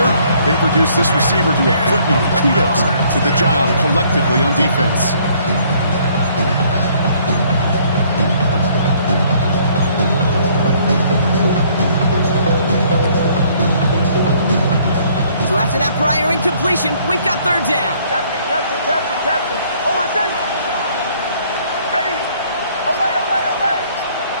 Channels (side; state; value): both; inverted; correlation -0.62